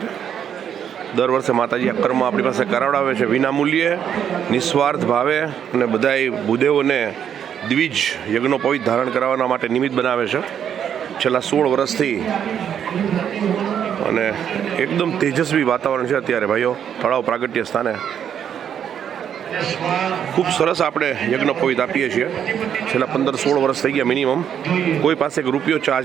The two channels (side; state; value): left; quieter; 8.8 dB